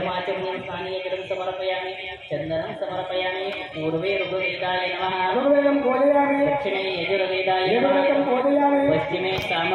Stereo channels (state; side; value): identical; both; correlation 1.00